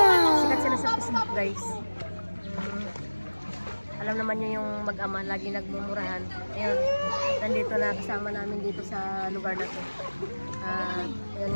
Sikat sila sa Facebook guys. Alam naman niyo yung mag-ama lagi nagmumurahan. Ayun, nandito na kasama namin dito sa lugar na to.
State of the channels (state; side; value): inverted; both; correlation -1.00